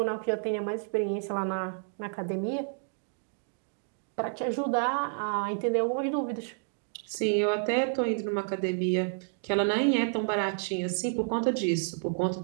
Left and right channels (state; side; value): silent; left; digital silence